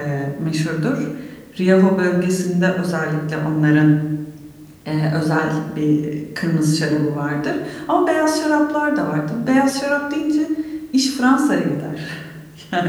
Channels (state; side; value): identical; both; correlation 1.00